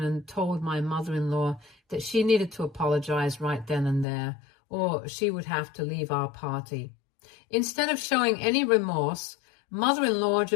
told my mother-in-law that she needed to apologize right then and there, or she would have to leave our party. Instead of showing any remorse, mother-in-law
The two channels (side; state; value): right; drops out; at 4.0 s